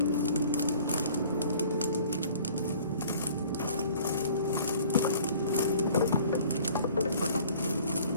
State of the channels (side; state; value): both; inverted; correlation -0.52